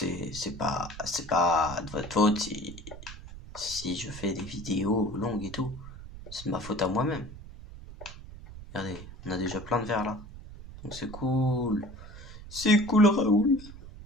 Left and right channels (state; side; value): noise; right; rumble, 14 dB below the sound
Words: pas de votre faute si je fais des vidéos longues et tout. C'est de ma faute à moi-même. Regardez, on a déjà plein de verres là. Donc c'est cool. C'est cool Raoul.